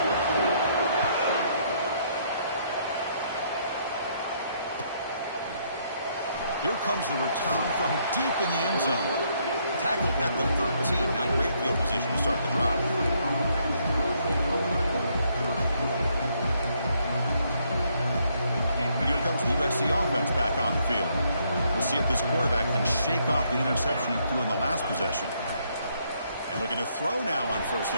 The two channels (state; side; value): inverted; both; correlation -0.71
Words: Here comes the return from deep in the end zone. Tackled at the 13. Now great field position to start the drive. And here comes the USC offense back on the field. We'll see if this quarterback can shake off the interception he threw in the last possession. And looking to throw now on first